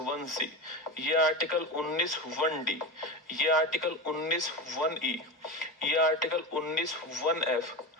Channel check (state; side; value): normal; both; correlation 0.21